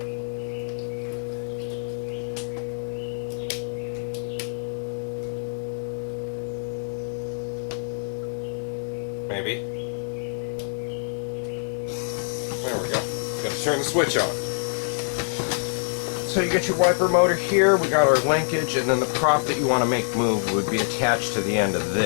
Maybe. There we go. Gotta turn the switch on. So you get your wiper motor here, we got our linkage, and then the prop that you want to make move would be attached to the end of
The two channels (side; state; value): right; silent; 59 dB below the other